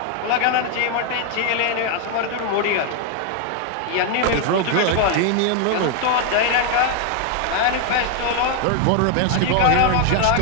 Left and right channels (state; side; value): different; both; correlation 0.01